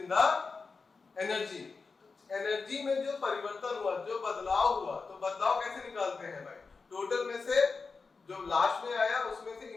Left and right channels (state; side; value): quieter; right; 4.5 dB